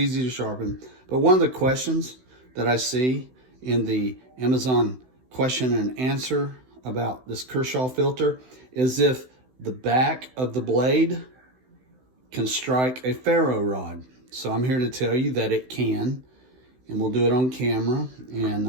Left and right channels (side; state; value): left; late; 16 ms